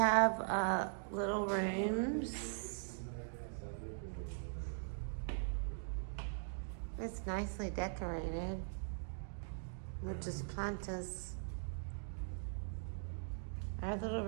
little rooms. It's nicely decorated with just plantas. Our little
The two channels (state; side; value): silent; left; digital silence